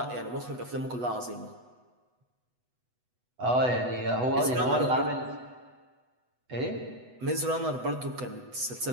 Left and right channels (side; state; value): left; late; 8.1 ms